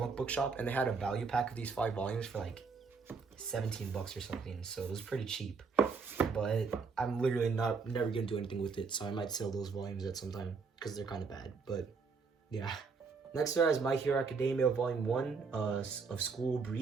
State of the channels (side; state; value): left; quieter; 4.9 dB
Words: book shop, and they had a value pack of these 5 volumes for like $17 or something, so it was pretty cheap. But I'm literally never gonna do anything with it, so I might sell those volumes at some time because they're kind of bad. But yeah. Next is My Hero Academia Volume 1 of School